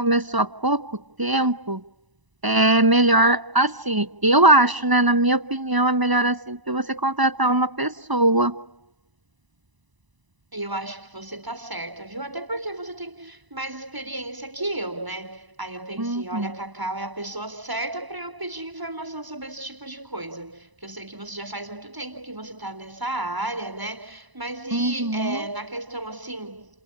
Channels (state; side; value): late; left; 1.0 ms